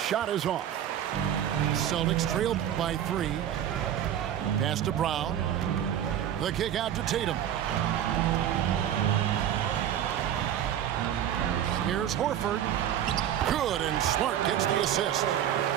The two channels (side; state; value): left; quieter; 10.5 dB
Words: is off. Celtics trailed by 3. Pass to Brown. The kick out to Tatum. Here's Horford. Good, and Smart gets the assist.